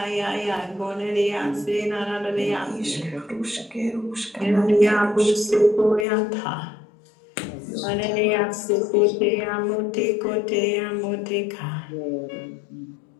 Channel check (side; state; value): right; drops out; at 6.1 s